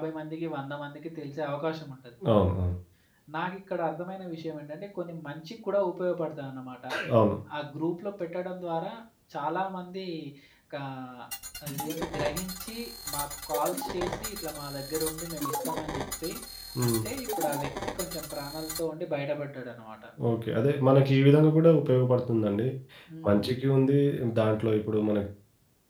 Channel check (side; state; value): both; identical; correlation 1.00